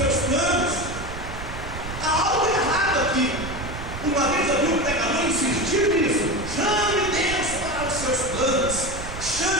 planos. Há algo errado aqui. Uma vez eu vi um pregador insistir nisso: chame Deus para os seus planos,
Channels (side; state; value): right; noise; rumble, 9 dB below the sound